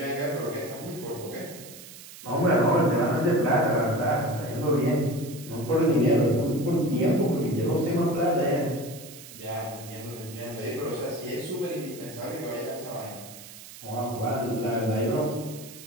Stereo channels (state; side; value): noise; right; hiss, 16 dB below the sound